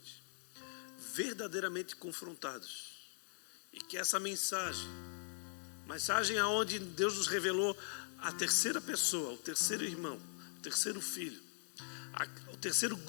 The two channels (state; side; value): silent; right; 50 dB below the other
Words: verdadeiramente confrontados, e que essa mensagem aonde Deus nos revelou a terceira pessoa, o terceiro irmão, o terceiro filho, o terceiro